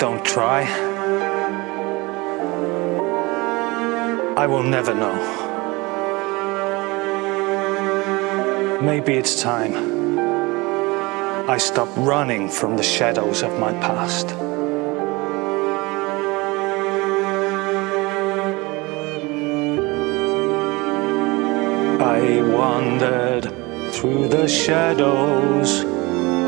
try, I will never know. Maybe it's time I stop running from the shadows of my past. I wandered through the shadows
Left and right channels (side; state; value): left; quieter; 23.9 dB